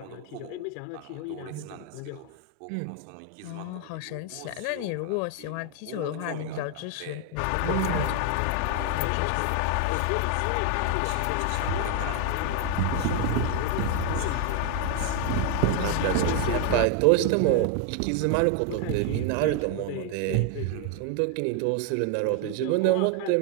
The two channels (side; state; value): both; different; correlation 0.01